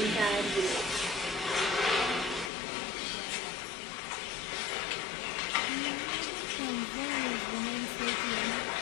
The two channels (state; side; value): drops out; right; at 2.5 s